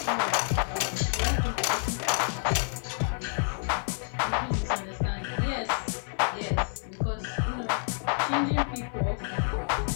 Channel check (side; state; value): right; silent; 59 dB below the other